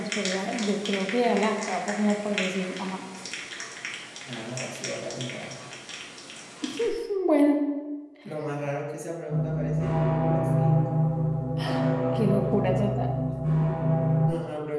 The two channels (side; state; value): both; identical; correlation 1.00